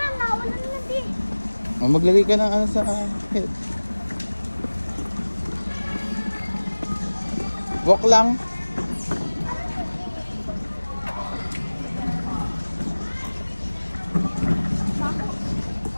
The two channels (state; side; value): inverted; both; correlation -1.00